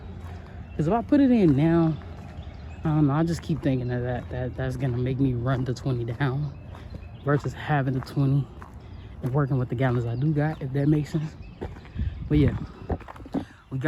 Because if I put it in now, I don't know, I just keep thinking of that's gonna make me run the 20 down versus having the 20 and working with the gallons I do got, if that makes sense. But yeah, we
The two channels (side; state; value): both; identical; correlation 1.00